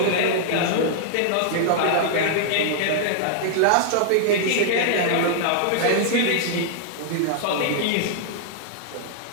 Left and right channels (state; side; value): different; both; correlation -0.01